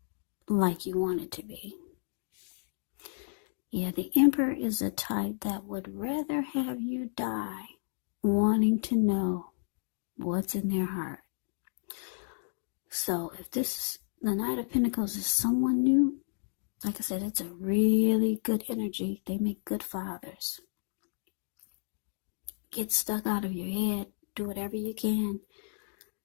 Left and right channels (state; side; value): silent; right; digital silence